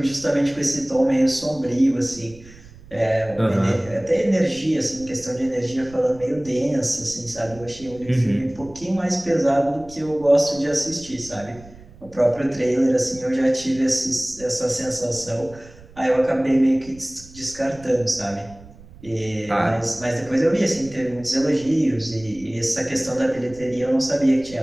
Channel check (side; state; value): right; noise; rumble, 21 dB below the sound